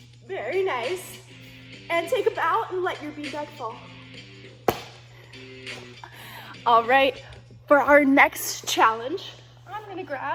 Very nice. And take a bow and let your beanbag fall. All right, for our next challenge, I'm gonna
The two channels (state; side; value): identical; both; correlation 1.00